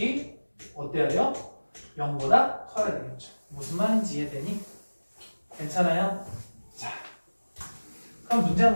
어때야 돼요? 0보다 커야 되겠죠. 무슨 말인지 이해되니? 괜찮아요? 자, 그럼 문제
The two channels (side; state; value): both; inverted; correlation -1.00